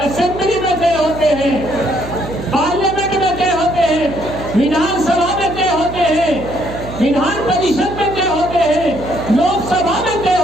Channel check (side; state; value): right; noise; hum, 11 dB below the sound